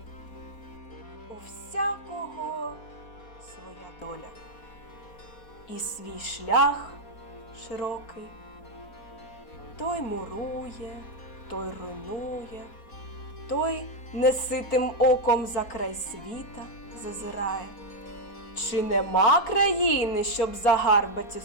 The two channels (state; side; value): late; right; 4.3 ms